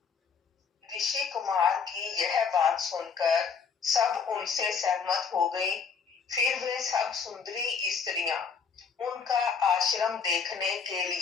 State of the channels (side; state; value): right; quieter; 6.0 dB